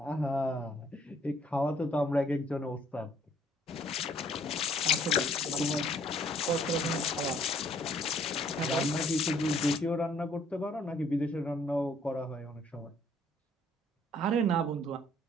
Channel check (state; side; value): normal; both; correlation 0.62